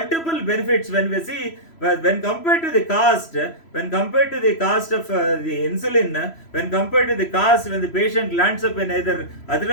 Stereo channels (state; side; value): late; right; 3.0 ms